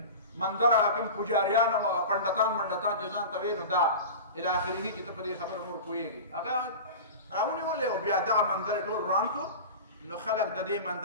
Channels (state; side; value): inverted; both; correlation -0.31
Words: مندر کوم پجاریان او هغه پنډتان منډتان چې ځان ته وې نو دا الی اخره چې ته په دې خبره نور پوهېږي هغه راونیولې او بیا دغه مندر یې ټول وران کړو نو خلک د دې